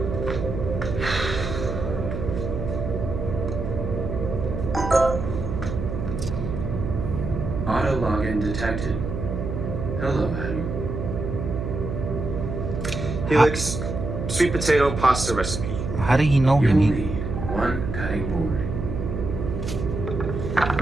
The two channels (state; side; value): noise; right; hum, 4 dB below the sound